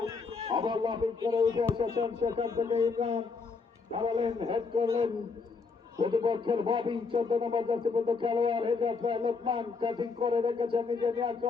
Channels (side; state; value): right; quieter; 4.6 dB